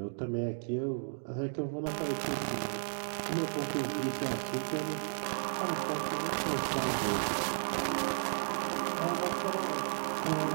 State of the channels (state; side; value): silent; left; digital silence